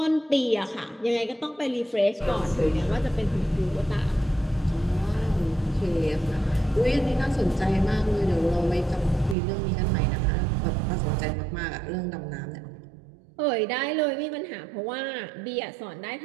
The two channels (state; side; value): drops out; left; at 9.3 s